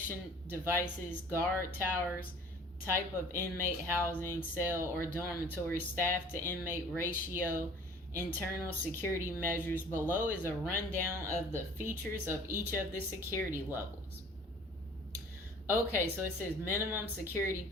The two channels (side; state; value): both; normal; correlation 0.49